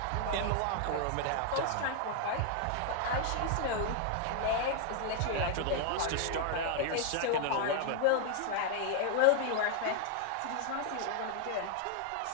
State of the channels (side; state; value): both; different; correlation 0.00